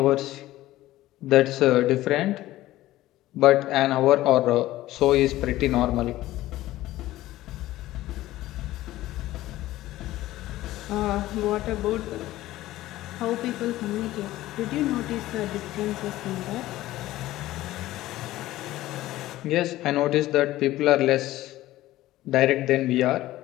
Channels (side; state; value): right; quieter; 15.8 dB